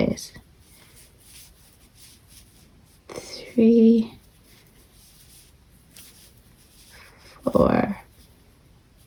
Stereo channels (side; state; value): both; identical; correlation 1.00